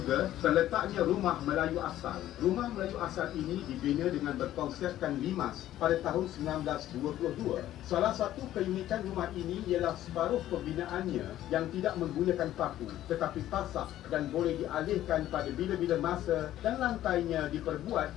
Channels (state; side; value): quieter; right; 13.1 dB